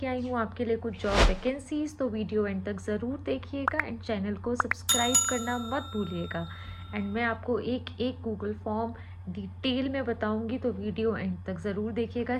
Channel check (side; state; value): both; identical; correlation 1.00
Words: आई हूँ आपके लिए कुछ जॉब वैकेंसीज, तो वीडियो एंड तक ज़रूर देखिएगा एंड चैनल को सब्सक्राइब करना मत भूलिएगा। एंड मैं आपको एक एक गूगल फॉर्म डिटेल में बताऊंगी, तो वीडियो एंड तक ज़रूर देखिएगा,